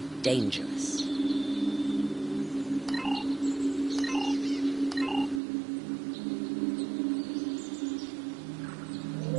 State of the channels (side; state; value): left; drops out; at 5.4 s